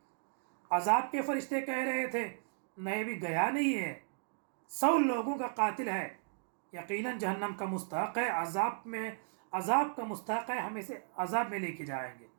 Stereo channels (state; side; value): silent; left; digital silence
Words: عذاب کے فرشتے کہہ رہے تھے نہیں، بھی گیا نہیں ہے، 100 لوگوں کا قاتل ہے، یقیناً جہنم کا مستحق ہے، عذاب کا مستحق ہے، ہم اسے عذاب میں لے کے جائیں گے۔